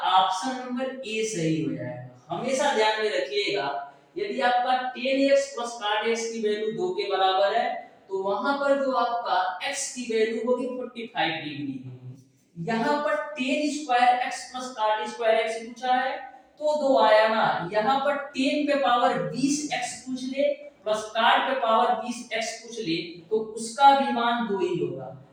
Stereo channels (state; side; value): identical; both; correlation 1.00